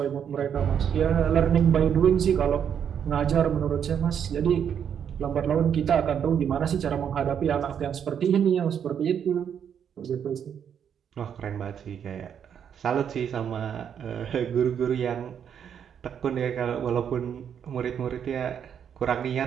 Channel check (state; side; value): quieter; left; 8.3 dB